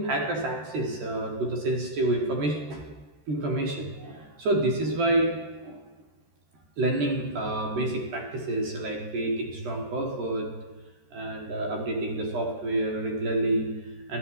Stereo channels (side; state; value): left; late; 13 ms